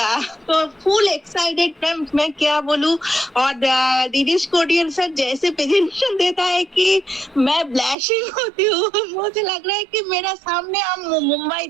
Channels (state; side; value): drops out; left; at 8.0 s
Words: तो फुल एक्साइटेड मैम मैं क्या बोलूं। और दिनेश कोटियान सर जैसे प्रेजेंटेशन देता है कि मैं ब्लैशिंग होती हूँ। मुझे लग रहा है कि मेरा सामने हम मुंबई